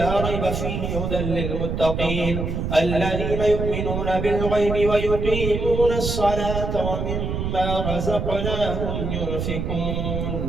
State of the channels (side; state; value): right; noise; rumble, 2 dB below the sound